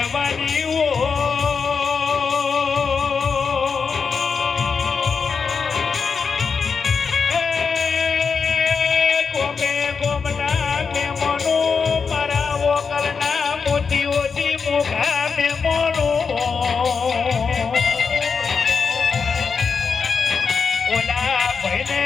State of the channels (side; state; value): right; quieter; 5.5 dB